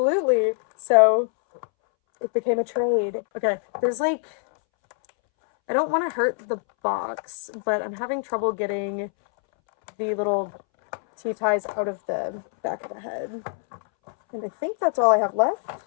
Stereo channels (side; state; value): right; silent; 62 dB below the other